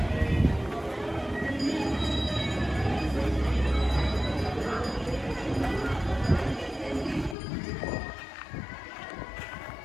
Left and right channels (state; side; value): drops out; right; at 7.4 s